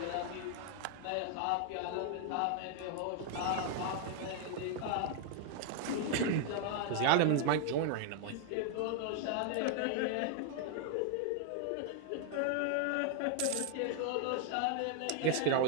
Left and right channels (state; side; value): different; both; correlation 0.00